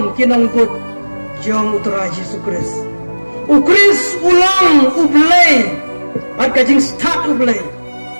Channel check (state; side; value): inverted; both; correlation -1.00